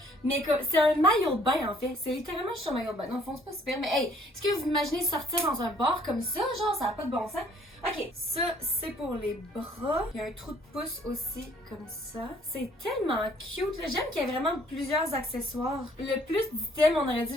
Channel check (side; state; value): both; normal; correlation 0.60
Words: Mais c'est un maillot de bain, en fait. C'est littéralement juste un maillot de bain. Non, c'est pas super. Mais hey, est-ce que vous imaginez sortir dans un bar comme ça? Genre, ça a pas de bon sens. Ok, ça, c'est pour les bras. Il y a un trou de pouce aussi, comme ça. C'est tellement cute, là. J'aime qu'il y ait vraiment plusieurs accessoires. Le plus d'items, on aurait